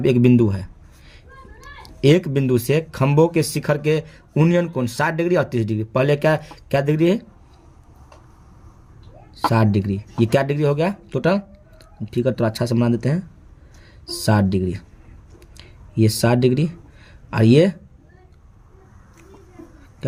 पे एक बिंदु है, एक बिंदु से खंभों के शिखर के उन्नयन कोण 60 डिग्री और 30 डिग्री। पहले क्या क्या डिग्री है, 60 डिग्री। ये क्या डिग्री हो गया टोटल? ठीक है, तो अच्छा से बना देते हैं, 60 डिग्री। ये 60 डिग्री और ये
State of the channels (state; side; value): identical; both; correlation 1.00